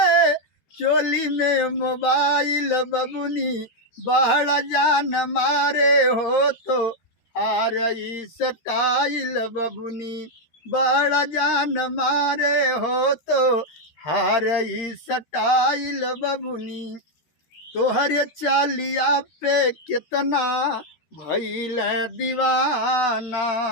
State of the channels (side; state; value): right; late; 13 ms